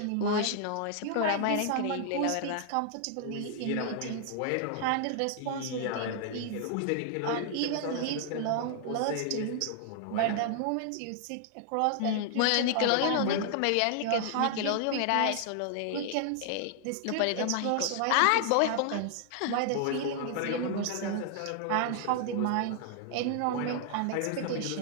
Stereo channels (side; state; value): both; different; correlation 0.00